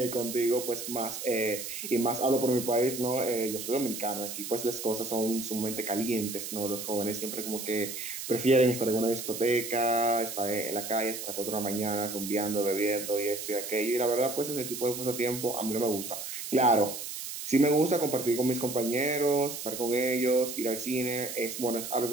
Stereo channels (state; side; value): noise; right; hiss, 7 dB below the sound